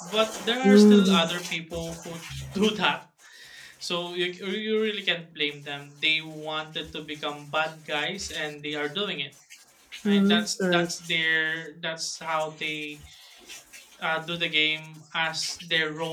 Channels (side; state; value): both; identical; correlation 1.00